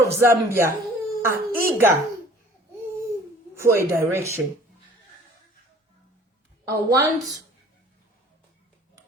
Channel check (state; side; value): normal; both; correlation 0.51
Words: Zambia are eager for a direction. I want